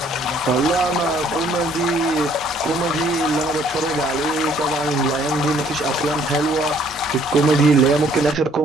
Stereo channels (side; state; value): both; normal; correlation 0.62